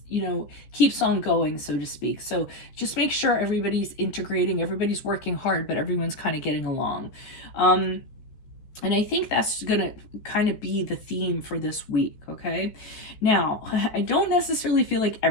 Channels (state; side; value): late; right; 14 ms